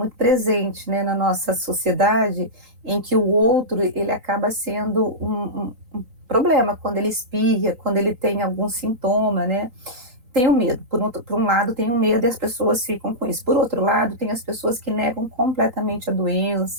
presente, né, na nossa sociedade, em que o outro, ele acaba sendo um problema, quando ele espirra, quando ele tem algum sintoma, né? Tem o medo, por um lado tem o medo e as pessoas ficam com isso. Por outro lado, tem as pessoas que negam completamente a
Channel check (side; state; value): left; late; 3.9 ms